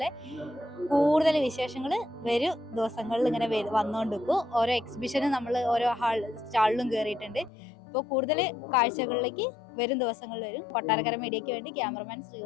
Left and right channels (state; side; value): drops out; right; at 7.5 s